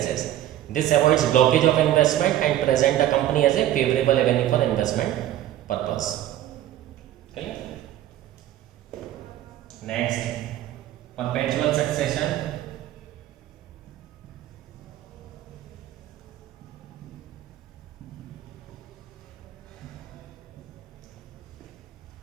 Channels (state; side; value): quieter; left; 12.8 dB